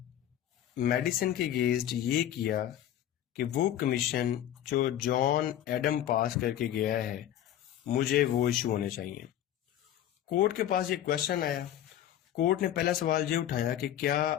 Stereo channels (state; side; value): quieter; right; 11.5 dB